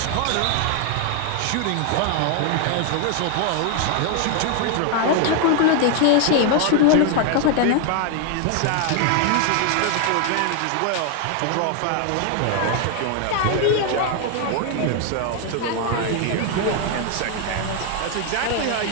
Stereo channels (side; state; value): both; different; correlation 0.00